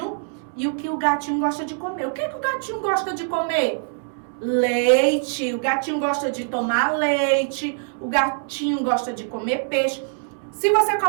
e o que o gatinho gosta de comer. O que é que o gatinho gosta de comer? Leite. O gatinho gosta de tomar leite. O gatinho gosta de comer peixe. Se você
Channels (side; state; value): left; silent; 63 dB below the other